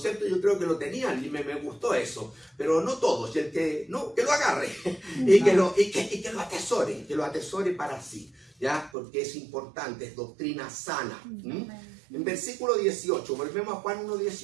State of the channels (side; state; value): left; drops out; at 8.9 s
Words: Yo creo que lo tenían y me gustó eso, pero no todos. Y el que no, que lo agarre y que lo atesore para sí, ¿ya? Porque es importante, es doctrina sana. En versículo 18, volvemos a Juan